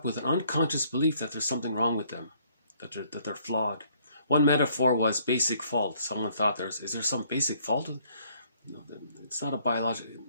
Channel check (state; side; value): inverted; both; correlation -0.64